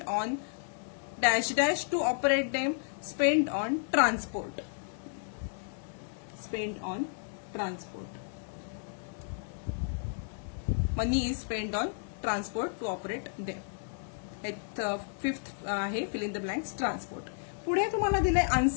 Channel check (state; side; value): silent; right; 56 dB below the other